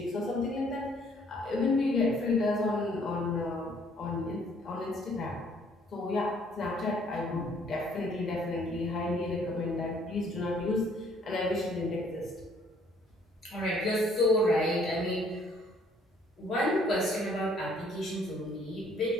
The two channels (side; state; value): both; normal; correlation 0.63